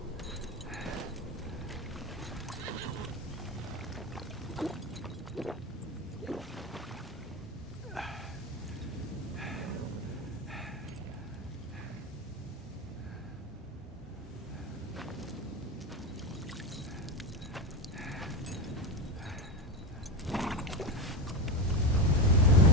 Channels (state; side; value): normal; both; correlation 0.18